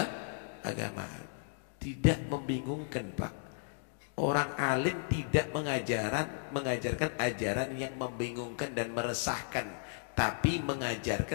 agama. Tidak membingungkan, Pak. Orang alim tidak mengajarkan ajaran yang membingungkan dan meresahkan, tapi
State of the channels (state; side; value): silent; right; digital silence